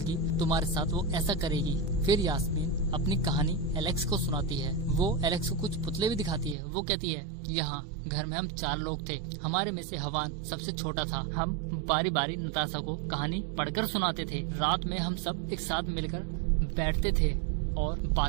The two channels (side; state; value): left; drops out; at 6.6 s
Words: तुम्हारे साथ वो ऐसा करेगी। फिर यास्मीन अपनी कहानी एलेक्स को सुनाती है। वो एलेक्स को कुछ पुतले भी दिखाती है। वो कहती है, यहाँ घर में हम 4 लोग थे, हमारे में से हवान सबसे छोटा था। हम बारी बारी नताशा को कहानी पढ़कर सुनाते थे। रात में हम सब एक साथ मिलकर बैठते थे और